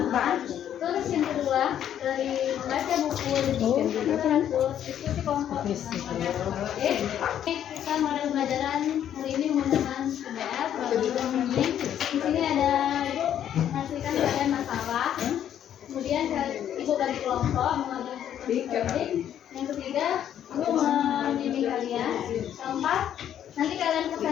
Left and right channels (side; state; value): right; quieter; 10.2 dB